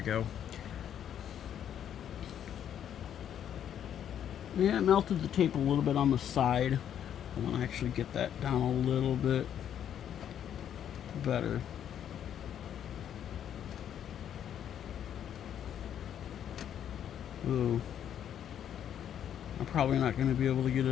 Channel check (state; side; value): quieter; right; 9.6 dB